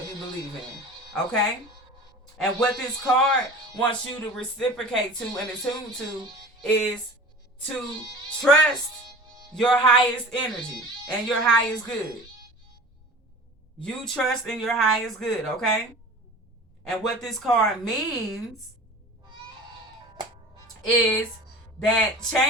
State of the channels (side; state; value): both; normal; correlation 0.39